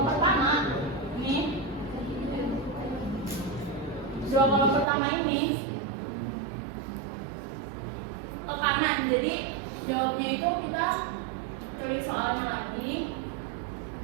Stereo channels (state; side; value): drops out; left; at 4.9 s